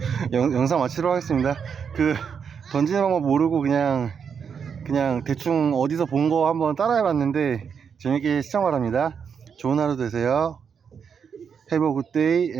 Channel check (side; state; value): left; quieter; 6.8 dB